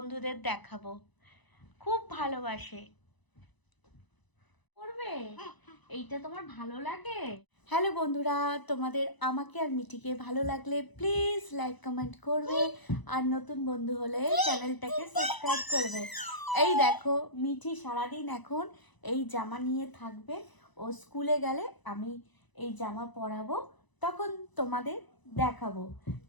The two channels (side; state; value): right; late; 1.0 ms